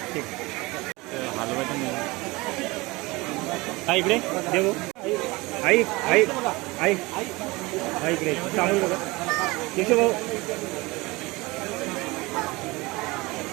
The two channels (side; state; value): left; quieter; 22.9 dB